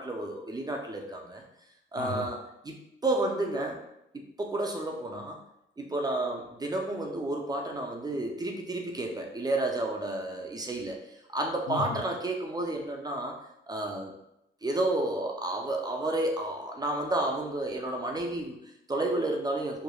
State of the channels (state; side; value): normal; both; correlation 0.54